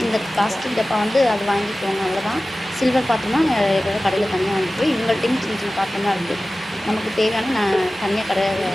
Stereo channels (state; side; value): normal; both; correlation 0.96